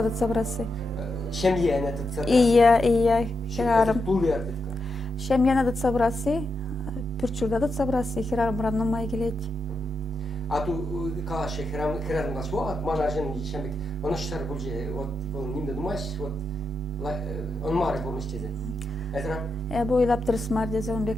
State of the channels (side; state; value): both; normal; correlation 0.85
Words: дат собрасы. Шемьяна тут собрасы. Ия, хирарм. Пул ярдетка. Шемьяна дат собрасы. Пурчурда дат собрасы. Хирармран нумай келет. А ту калашы хирарм наш вот манажен шембек. Оны штар булже вот нимде думаешь вот он мары болмыштезе. Эзра. Бу илап тырысмар дезе он